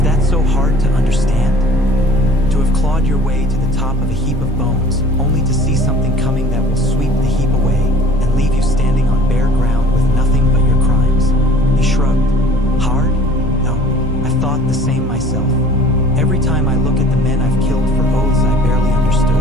that so hard to understand? To have clawed your way to the top of a heap of bones, only to see something coming that will sweep the heap away and leave you standing on bare ground with nothing but your crimes." He shrugged. "Hard? No, I've thought the same myself. Every time I look at the men I've killed for oaths I barely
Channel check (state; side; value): normal; both; correlation 0.48